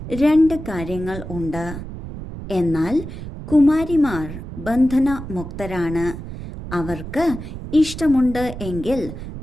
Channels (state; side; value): noise; right; rumble, 10 dB below the sound